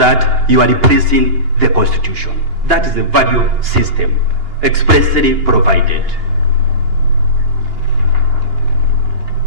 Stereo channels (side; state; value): left; late; 2.8 ms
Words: you are replacing the Constitution. That is the value system expressly provided.